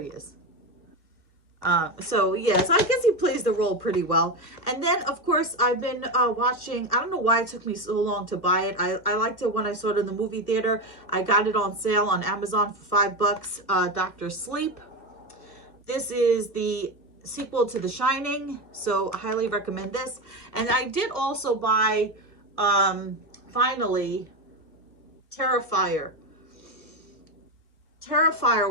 he is. So yeah, so I guess he plays the role pretty well. And then, of course, I've been watching, I don't know why it took me so long to buy it. I liked it when I saw it in the movie theater. I got it on sale on Amazon for $5, Dr. Sleep. This is the sequel to The Shining, so I highly recommend this. And I did also buy, finally, Terrifier.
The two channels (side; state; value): right; late; 1.6 ms